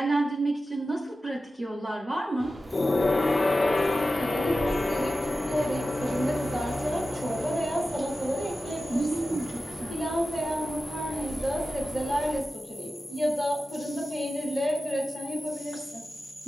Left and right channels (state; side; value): normal; both; correlation 0.94